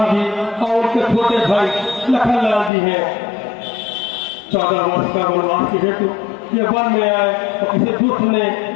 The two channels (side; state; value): right; drops out; at 2.7 s